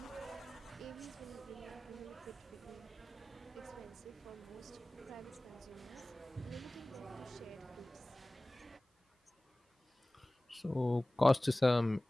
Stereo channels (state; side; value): normal; both; correlation 0.98